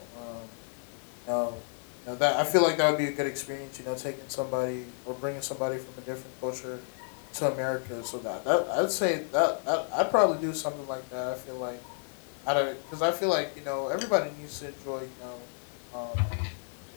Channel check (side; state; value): right; silent; 57 dB below the other